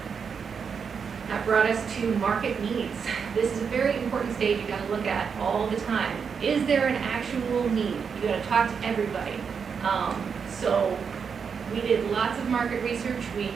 That brought us to market needs. This is a very important stage you got to look at all the time. Is there an actual need? You got to talk to everybody. So we did lots of market research. We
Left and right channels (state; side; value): quieter; left; 6.3 dB